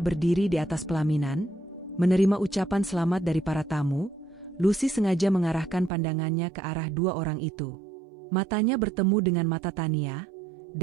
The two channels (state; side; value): drops out; left; at 5.9 s